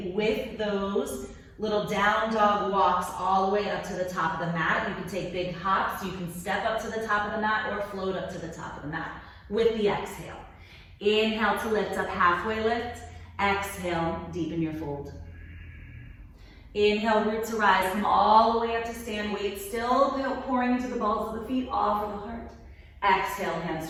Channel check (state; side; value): identical; both; correlation 1.00